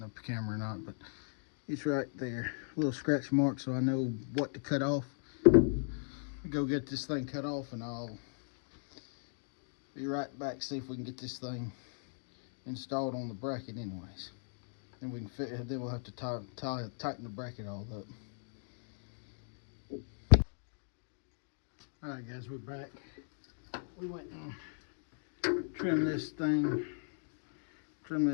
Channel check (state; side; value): silent; right; digital silence